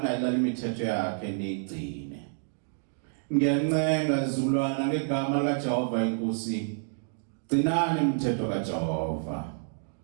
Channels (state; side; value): silent; left; digital silence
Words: imithetho yakhe nigcine. Ngiyancenga izizukulwana ngegama likaJehova inkosi. Gcinani imithetho kaJehova.